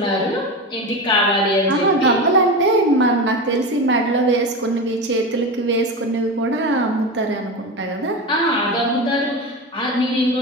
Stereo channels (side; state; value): both; normal; correlation 0.23